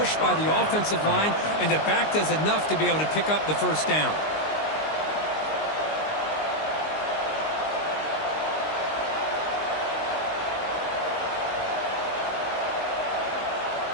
by the offensive line, and the back does enough to be able to pick up the first down.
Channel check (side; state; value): right; late; 19 ms